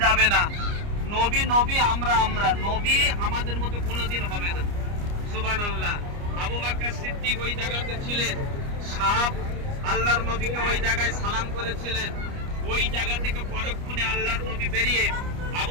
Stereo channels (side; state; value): left; late; 29 ms